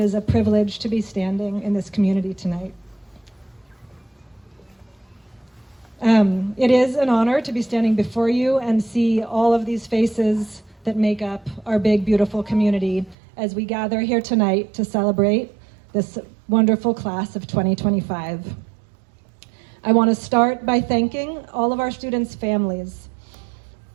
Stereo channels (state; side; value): drops out; left; at 13.2 s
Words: a privilege to be standing in this community tonight. It is an honor to be standing before you and see all of these faces that make up our big, beautiful community as we gather here tonight to celebrate this wonderful class of 2025. I want to start by thanking all of our students' families,